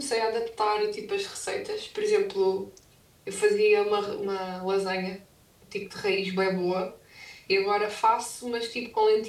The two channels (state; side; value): identical; both; correlation 1.00